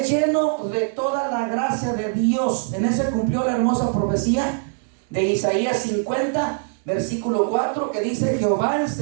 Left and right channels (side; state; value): left; silent; 60 dB below the other